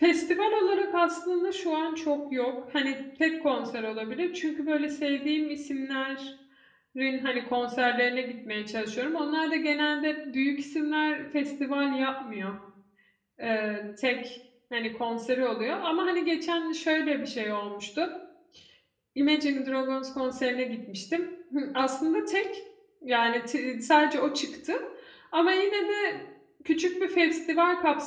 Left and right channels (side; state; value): both; identical; correlation 1.00